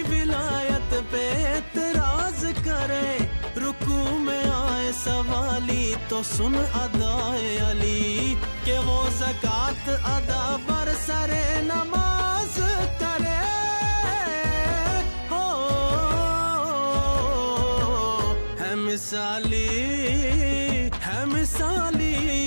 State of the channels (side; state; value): both; inverted; correlation -1.00